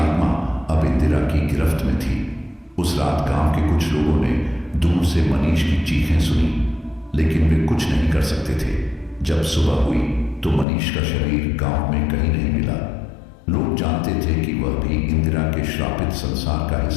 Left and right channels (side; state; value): right; drops out; at 10.7 s